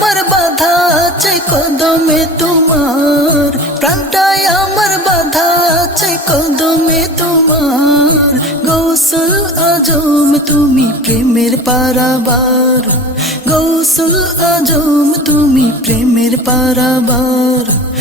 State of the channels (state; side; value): normal; both; correlation 0.37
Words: বাধা আছে কদমে তোমার, প্রাণটায় আমার বাধা আছে কদমে তোমার। গৌসুল আজম তুমি প্রেমের পারাবার, গৌসুল আজম তুমি প্রেমের পারাবার,